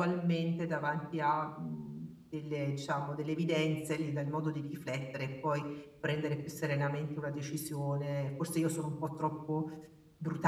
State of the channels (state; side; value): identical; both; correlation 1.00